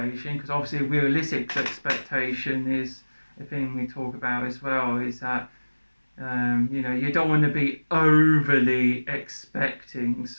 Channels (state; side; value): inverted; both; correlation -1.00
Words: because obviously realistic expectation is a thing we talk about as well, is that you don't want to be overly expecting,